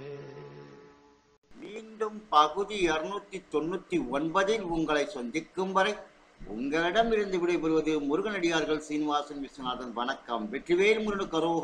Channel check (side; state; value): both; identical; correlation 1.00